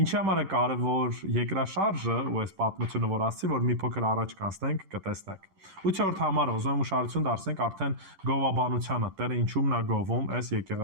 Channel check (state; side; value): late; left; 10 ms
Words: Ինչի համար է կարևոր երկրաշարժը ու այս պատմությունը որ ասացի, որ մի փոքր առաջ կանցնենք, կտեսնենք։ 8-րդ համարը ուզում եմ ուշադրություն դարձնենք արդեն գովաբանությանը, Տերը ինչումն է գովում այս